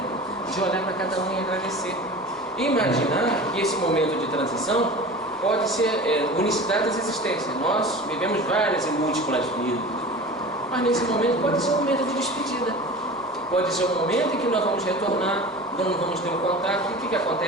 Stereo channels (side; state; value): both; normal; correlation 0.36